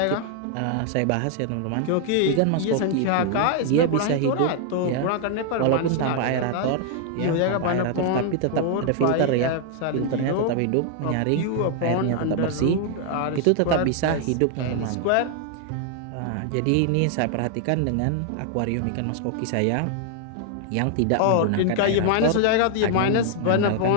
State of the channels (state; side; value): different; both; correlation 0.00